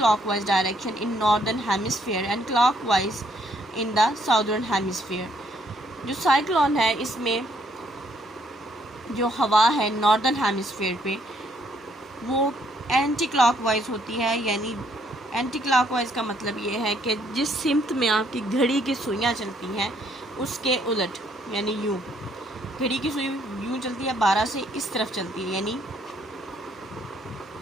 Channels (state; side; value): normal; both; correlation 0.69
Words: direction in northern hemisphere and clockwise in the southern hemisphere. जो साइक्लोन है इसमें जो हवा है नॉर्दर्न हेमिस्फीयर पे वो एंटी क्लॉकवाइज होती है. यानी एंटी क्लॉकवाइज का मतलब ये है कि जिस सिमत में आपकी घड़ी की सुइयाँ चलती हैं उसके उलट. यानी यूँ, घड़ी की सुई यूँ चलती है, 12 से इस तरफ चलती है, यानी